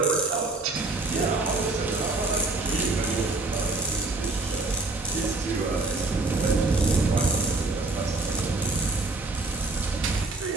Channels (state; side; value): quieter; left; 3.3 dB